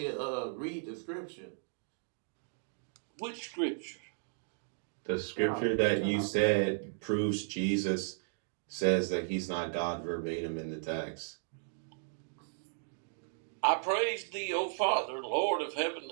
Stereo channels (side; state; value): left; silent; digital silence